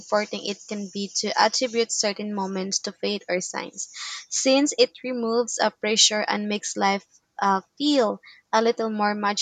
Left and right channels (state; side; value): identical; both; correlation 1.00